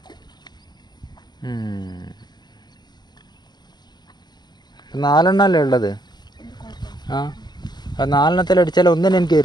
നാലെണ്ണല്ലേ ഉള്ളത്? ആ 4 അടിച്ചാൽ ഒന്നിനും എനിക്ക്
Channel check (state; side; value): late; right; 0.21 ms